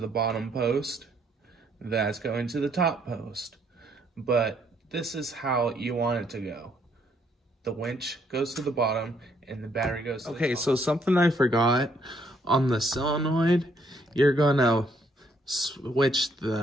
bottom post. That's going to the top post. But this is how you want it to go. The winch goes to the bottom and the battery goes to the top. Okay, so something I forgot. On the solenoid, you're gonna switch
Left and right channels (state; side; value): normal; both; correlation 0.69